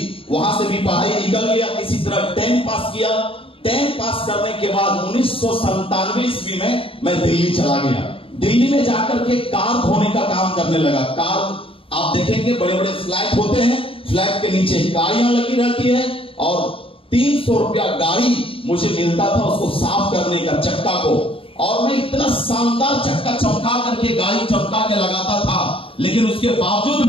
वहां से भी पढ़ाई निकल गया, किसी तरह 10 पास किया। 10 पास करने के बाद 1997 ईस्वी में मैं दिल्ली चला गया। दिल्ली में जाकर के कार धोने का काम करने लगा। कार आप देखेंगे बड़े बड़े फ्लैट होते हैं, फ्लैट के नीचे गाड़ियां लगी रहती है और 300 रुपया गाड़ी मुझे मिलता था उसको साफ करने का, चक्का को। और मैं इतना शानदार चक्का चमका करके, गाड़ी चमका के लगाता था, लेकिन उसके बावजूद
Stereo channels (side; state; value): right; late; 0.26 ms